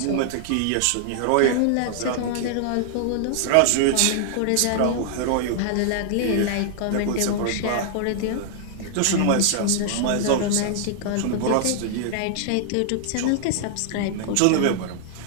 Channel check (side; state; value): both; different; correlation -0.01